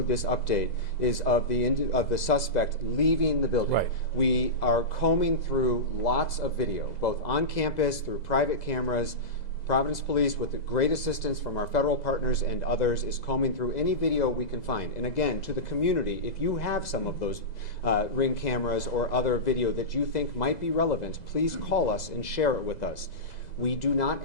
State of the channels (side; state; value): right; late; 2.0 ms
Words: this update is of the suspect leaving the building. Right. We are combing through lots of video, both on campus, through private cameras. Providence Police, with the great assistance from our federal partners and others, is combing through any video we can find. And again, to the community, if you have some of those Ring cameras or other video that you think might be relevant, please call us and share it with us. We do